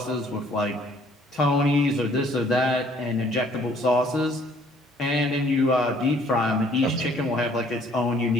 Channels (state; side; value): normal; both; correlation 0.60